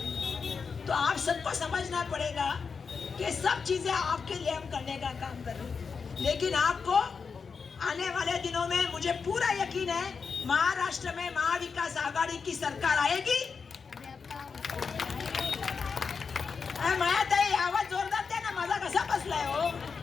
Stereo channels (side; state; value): right; quieter; 5.5 dB